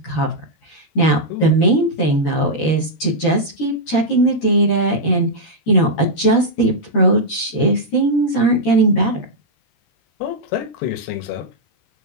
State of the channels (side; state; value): right; late; 13 ms